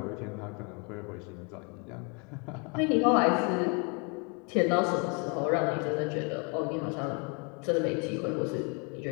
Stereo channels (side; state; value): right; quieter; 33.9 dB